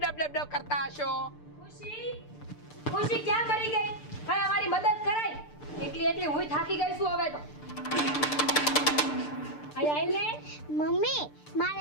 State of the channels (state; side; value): late; right; 6.7 ms